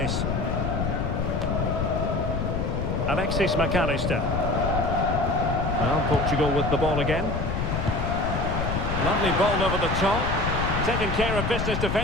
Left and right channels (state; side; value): noise; left; rumble, 1 dB below the sound